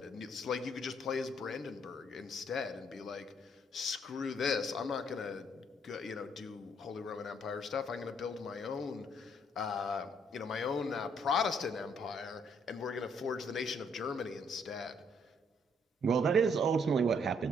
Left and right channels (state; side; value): normal; both; correlation 0.68